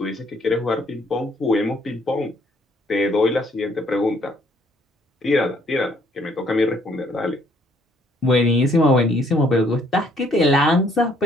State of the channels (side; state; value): both; normal; correlation 0.65